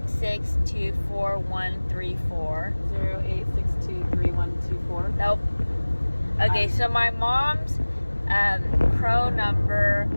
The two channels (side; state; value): both; inverted; correlation -1.00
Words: 6, 2, 4, 1, 3, 4. Nope. Okay, so my mom's crow number